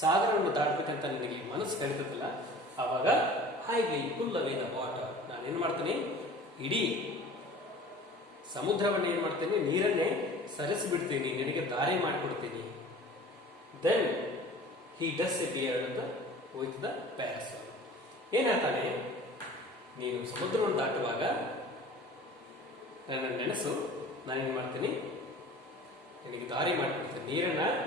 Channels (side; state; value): both; normal; correlation 0.43